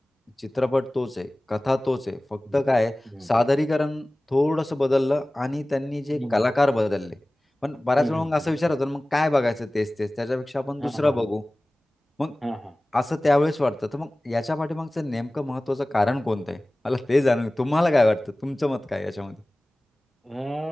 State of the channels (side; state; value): both; normal; correlation 0.98